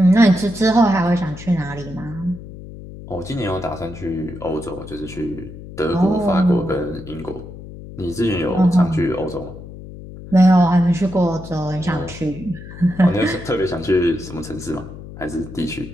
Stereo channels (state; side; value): noise; left; hum, 14 dB below the sound